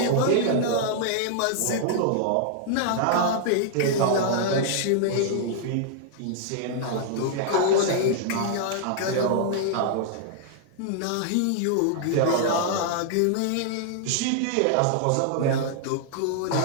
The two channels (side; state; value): both; different; correlation -0.01